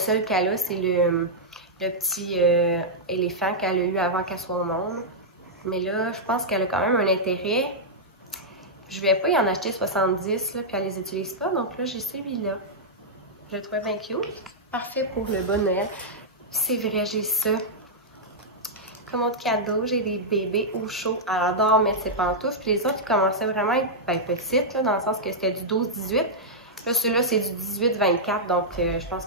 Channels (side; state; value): both; normal; correlation -0.08